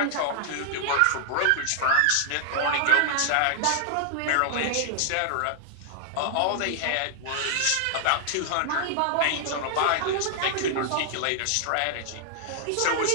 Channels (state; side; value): different; both; correlation -0.01